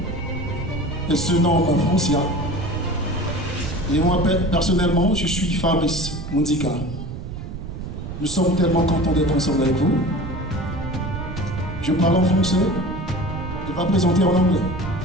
Elle se nomme Francia. Et moi, personnellement, je suis Fabrice Mundika. Nous sommes tellement contents d'être ensemble avec vous. Je parle en français. Elle va présenter en anglais.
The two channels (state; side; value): noise; right; rumble, 8 dB below the sound